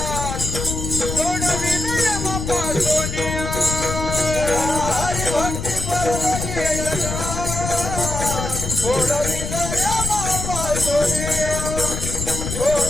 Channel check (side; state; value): left; noise; rumble, 4 dB below the sound